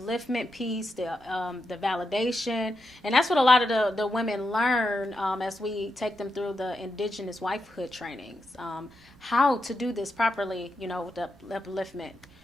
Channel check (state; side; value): noise; right; rumble, 29 dB below the sound